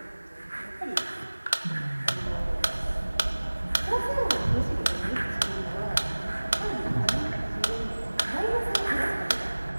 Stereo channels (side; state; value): both; inverted; correlation -1.00